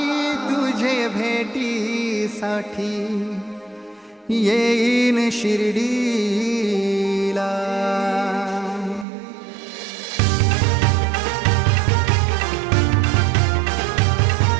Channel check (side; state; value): left; drops out; at 9.1 s